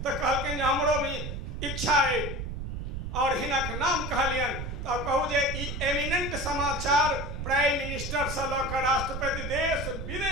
कहलकिन हमरो भी इच्छा है। और हिनक नाम कहलियन तो कहू जे एमिनेंट समाचार प्राइम मिनिस्टर से लऽ कऽ राष्ट्रपति देश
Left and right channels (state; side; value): noise; right; rumble, 5 dB below the sound